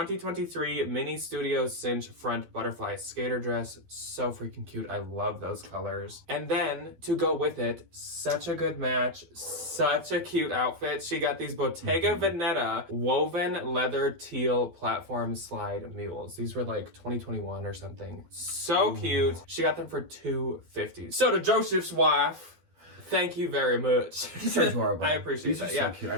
Mini Studio Cinch Front Butterfly Skater Dress. So freaking cute. I love those colors. And then, to go with it, such a good match, such a cute outfit. She got these Bottega Veneta woven leather teal platform slide mules. These were like 2021 or something. So cute. She got them for $250. So to Joseph's wife, thank you very much. These are adorable. I appreciate that. So cute. I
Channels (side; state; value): left; late; 12 ms